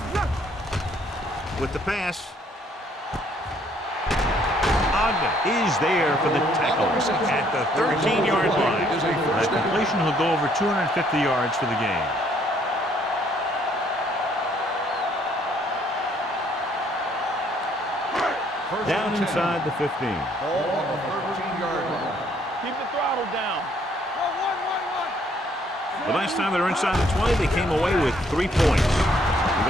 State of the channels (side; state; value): both; normal; correlation 0.65